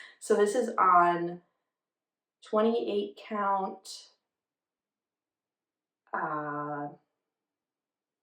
So this is on 28 count,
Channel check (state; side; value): identical; both; correlation 1.00